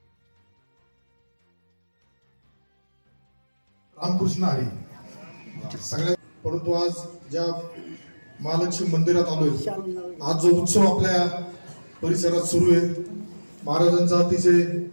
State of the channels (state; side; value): inverted; both; correlation -1.00